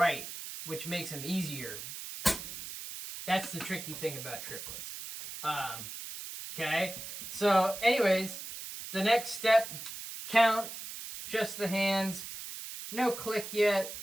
which makes them easier. That's the tricky thing about triplets. Okay, so anyways, the next step, count just the hands, no click yet,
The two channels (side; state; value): right; noise; hiss, 9 dB below the sound